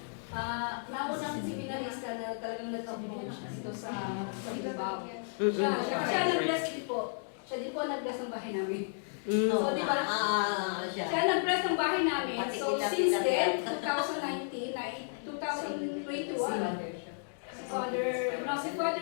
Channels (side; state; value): right; silent; digital silence